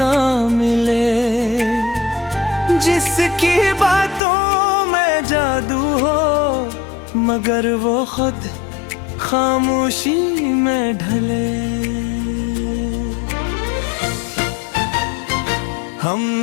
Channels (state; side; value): drops out; right; at 4.2 s